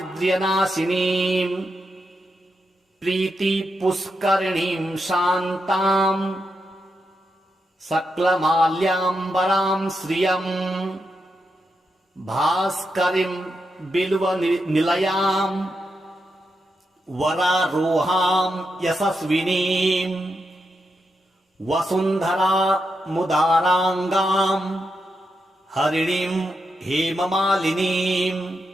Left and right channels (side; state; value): both; normal; correlation 0.85